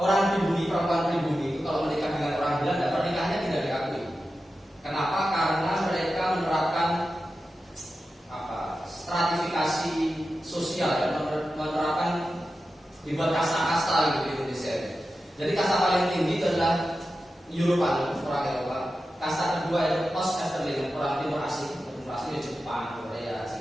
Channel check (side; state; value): both; normal; correlation 0.92